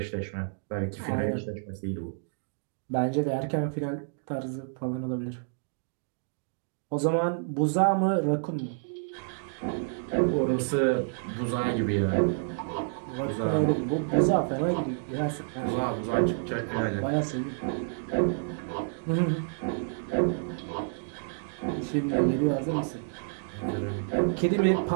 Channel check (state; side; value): silent; left; digital silence